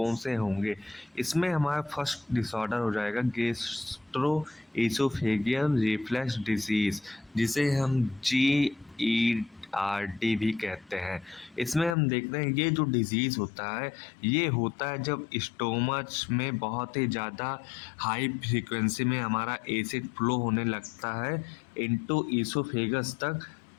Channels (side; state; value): right; drops out; at 12.0 s